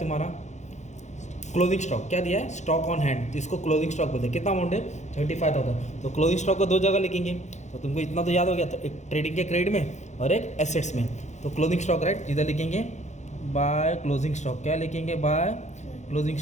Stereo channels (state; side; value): late; right; 0.34 ms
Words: क्लोजिंग स्टॉक। क्या दिया है, स्टॉक ऑन हैंड, तो इसको क्लोजिंग स्टॉक बोलते हैं। कितना अमाउंट है, 35,000। तो क्लोजिंग स्टॉक को दो जगह लिखेंगे, तो तुमको इतना तो याद हो गया, तो एक ट्रेडिंग के क्रेडिट में और एक एसेट्स में। तो क्लोजिंग स्टॉक राइट, इधर लिखेंगे बाय क्लोजिंग स्टॉक, क्या लिखेंगे, बाय क्लोजिंग